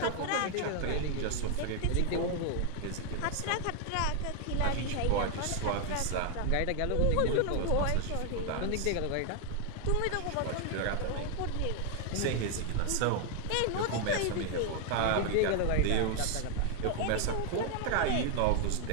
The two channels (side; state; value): both; different; correlation 0.01